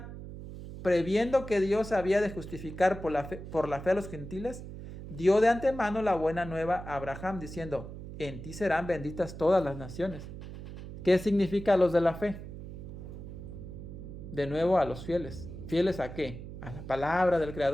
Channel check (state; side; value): noise; right; hum, 11 dB below the sound